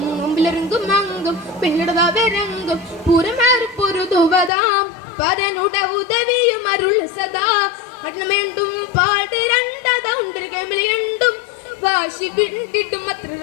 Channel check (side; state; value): right; drops out; at 4.5 s